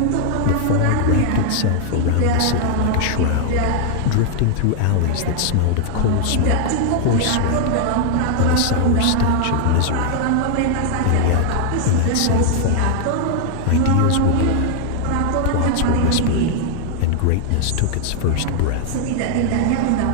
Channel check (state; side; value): different; both; correlation 0.00